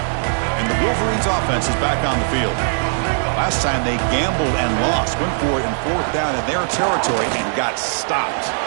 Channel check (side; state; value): left; silent; digital silence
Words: And the Wolverines' offense is back on the field. Last time they gambled and lost. Went for it in 4th down in their territory and got stopped.